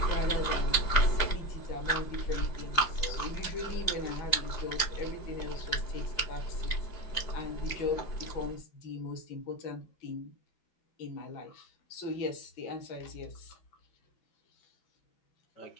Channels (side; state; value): right; late; 4.8 ms